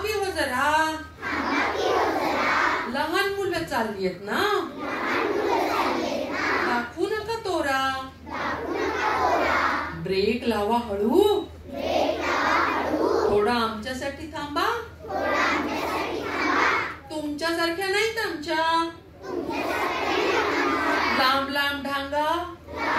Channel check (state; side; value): identical; both; correlation 1.00